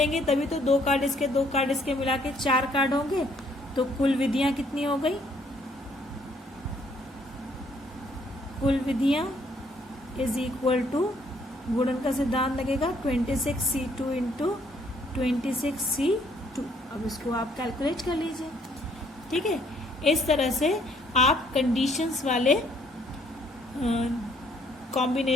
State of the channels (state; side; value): normal; both; correlation 0.65